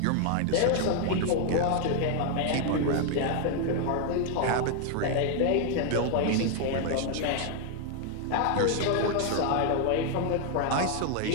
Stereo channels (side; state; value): both; different; correlation 0.00